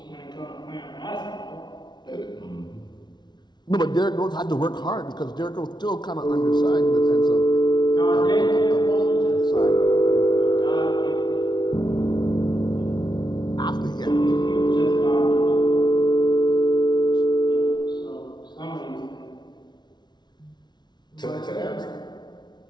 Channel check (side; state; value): right; late; 0.20 ms